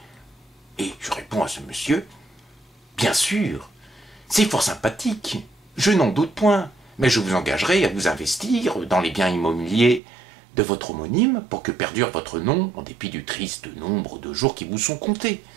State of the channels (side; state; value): left; drops out; at 10.0 s